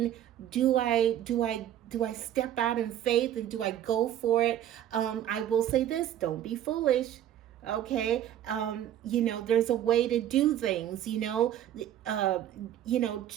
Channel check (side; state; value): left; quieter; 11.3 dB